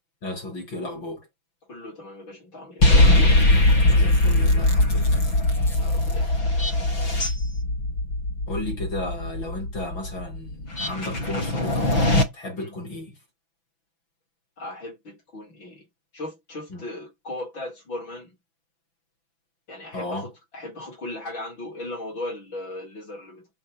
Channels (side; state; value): right; late; 6.0 ms